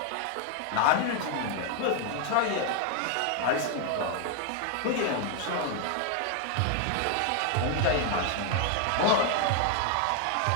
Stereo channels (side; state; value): both; different; correlation 0.00